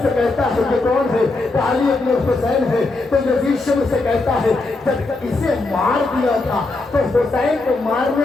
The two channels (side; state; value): right; quieter; 3.3 dB